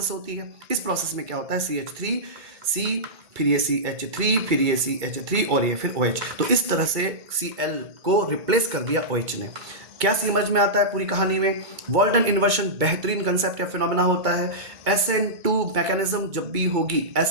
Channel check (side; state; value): left; late; 2.3 ms